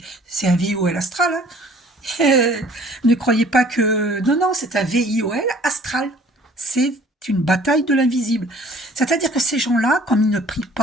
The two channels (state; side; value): normal; both; correlation 0.53